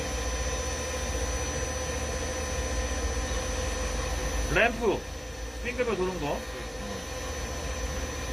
램프 빙글빙글 도는 거.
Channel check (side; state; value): both; identical; correlation 1.00